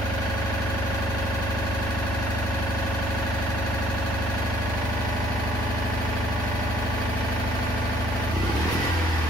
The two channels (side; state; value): left; noise; hum, 6 dB below the sound